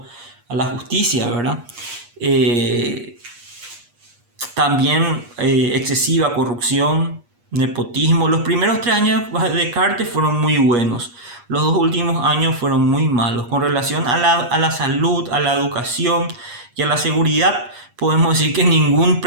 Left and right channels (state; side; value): late; left; 8.4 ms